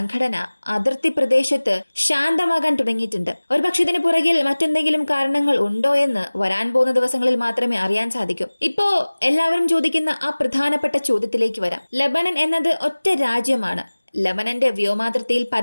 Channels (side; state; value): both; inverted; correlation -1.00